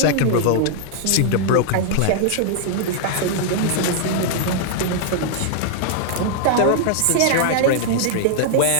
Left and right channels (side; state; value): both; different; correlation -0.01